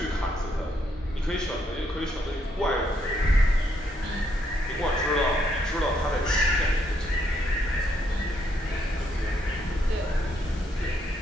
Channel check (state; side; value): normal; both; correlation 0.74